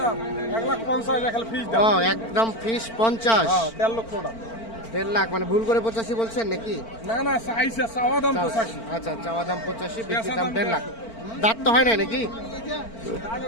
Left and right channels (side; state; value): right; late; 4.4 ms